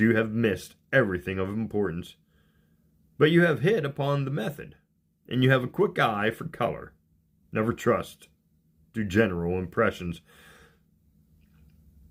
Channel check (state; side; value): identical; both; correlation 1.00